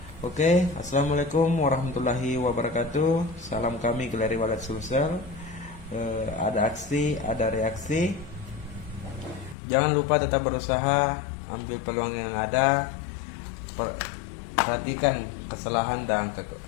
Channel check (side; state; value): right; drops out; at 9.6 s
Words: Oke, assalamualaikum warahmatullahi wabarakatuh. Salam kami Galeri Walet Sulsel. Ada aksi, ada reaksi. Jangan lupa tetap berusaha, ambil peluang yang ada. Perhatikan kesalahan dan